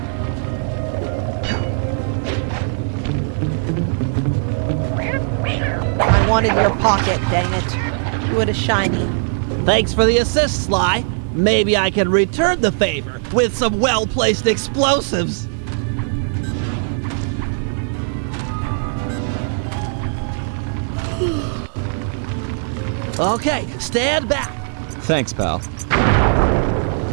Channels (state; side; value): silent; left; 66 dB below the other